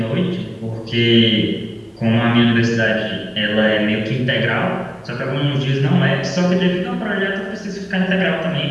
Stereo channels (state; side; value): identical; both; correlation 1.00